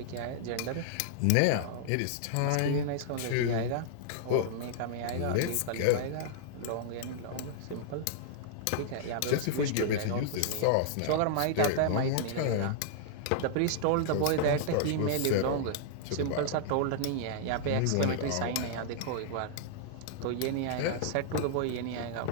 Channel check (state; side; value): different; both; correlation -0.01